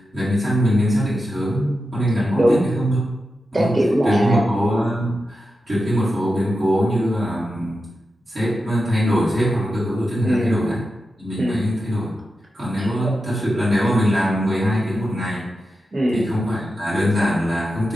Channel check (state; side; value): normal; both; correlation 0.90